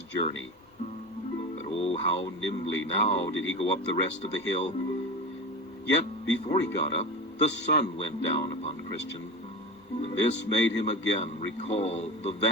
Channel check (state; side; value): normal; both; correlation 0.27